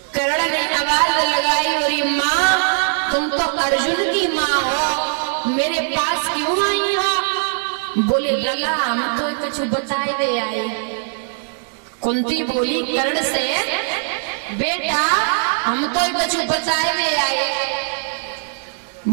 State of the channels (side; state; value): left; silent; 66 dB below the other